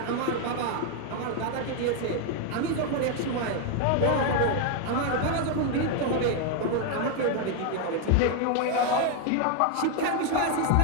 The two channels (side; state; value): both; different; correlation 0.01